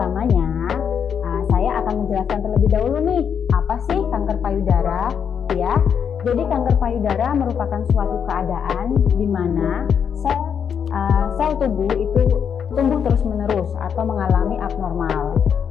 saya akan menjelaskan terlebih dahulu nih, apa sih kanker payudara, ya. Jadi kanker payudara merupakan suatu keadaan di mana sel tubuh itu tumbuh terus-menerus atau mengalami abnormal.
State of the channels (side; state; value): right; quieter; 7.5 dB